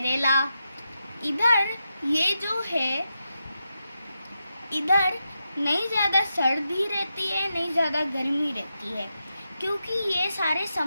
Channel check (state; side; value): inverted; both; correlation -0.87